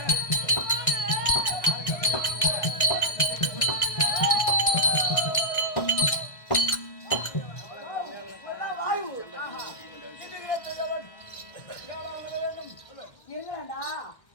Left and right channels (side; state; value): right; late; 1.6 ms